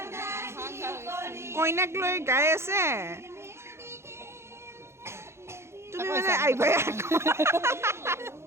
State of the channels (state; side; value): late; left; 0.13 ms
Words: কইনাক লৈ গাই আছে। তুমি মানে আহিবাই